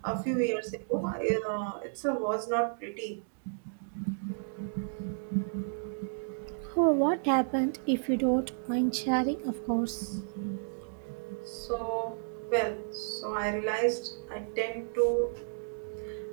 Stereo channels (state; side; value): silent; left; digital silence